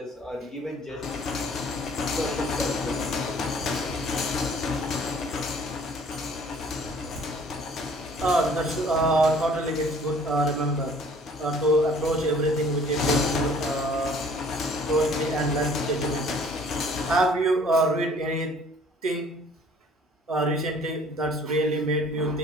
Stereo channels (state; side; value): normal; both; correlation 0.54